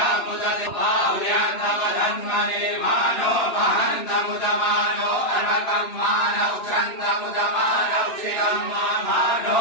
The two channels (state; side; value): late; right; 2.9 ms